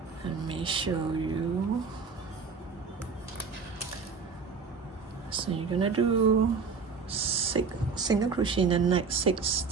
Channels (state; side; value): quieter; left; 5.3 dB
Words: Let me show you. So you're gonna do 6 single crochet in the next 6